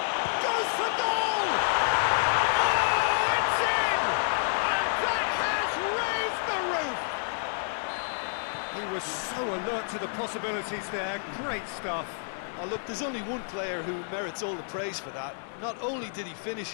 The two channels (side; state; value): right; silent; 59 dB below the other